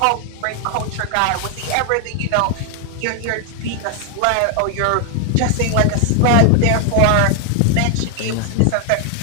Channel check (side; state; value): both; different; correlation 0.00